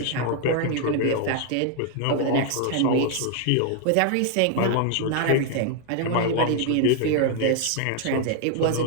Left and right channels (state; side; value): different; both; correlation 0.00